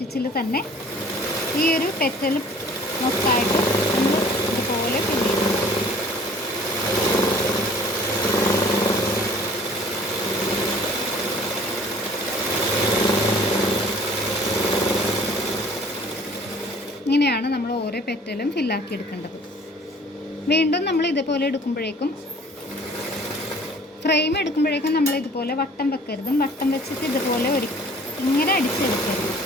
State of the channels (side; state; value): both; normal; correlation 0.51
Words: തന്നെ ഈ ഒരു പെറ്റൽ മൊത്തമായിട്ട് നമ്മൾ ഇതുപോലെ ഫില്ല് ചെയ്യണം. ഇങ്ങനെയാണ് നമ്മൾ ഓരോ പെറ്റലും ഫില്ലാക്കി എടുക്കേണ്ടത്. വീണ്ടും നമ്മൾ ഇതുപോലെ എടുക്കുമ്പോഴേക്കും ഫ്രെയിം എടുക്കുമ്പോഴേക്കും നമ്മൾ ഇതുപോലെ വട്ടം വെക്കരുതും. വട്ടം വെച്ചിട്ട് ഇതുപോലെ ഇങ്ങനെ അടിച്ചെടുക്കരുത്.